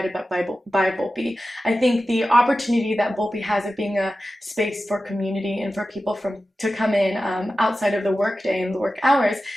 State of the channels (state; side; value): normal; both; correlation 0.93